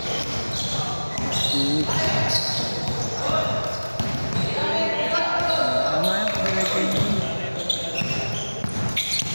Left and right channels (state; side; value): inverted; both; correlation -1.00